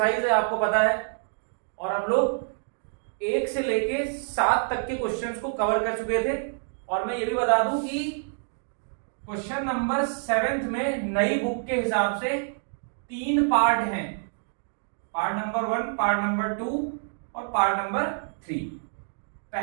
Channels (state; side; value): silent; left; digital silence